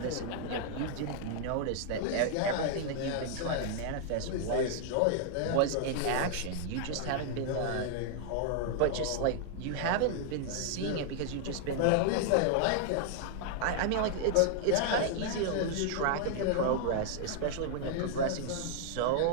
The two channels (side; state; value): both; different; correlation -0.01